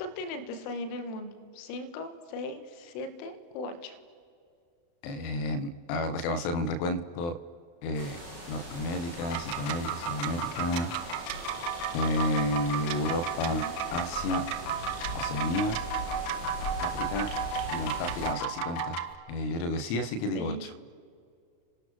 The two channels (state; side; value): late; right; 35 ms